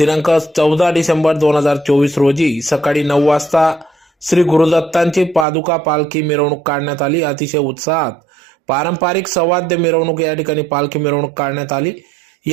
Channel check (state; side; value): drops out; left; at 5.5 s